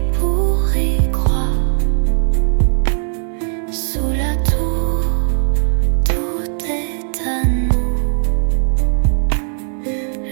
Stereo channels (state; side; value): silent; left; 59 dB below the other